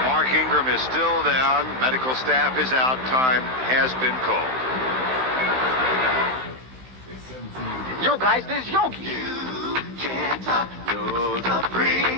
Mark Ingram is still down. Medical staff is out. Time has been called. Yo, guys, this is Yogi. Can't top the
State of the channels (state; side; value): late; left; 16 ms